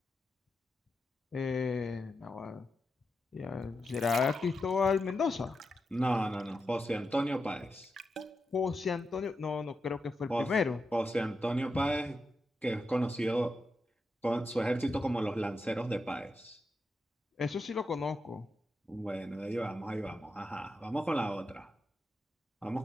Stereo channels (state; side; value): normal; both; correlation 0.87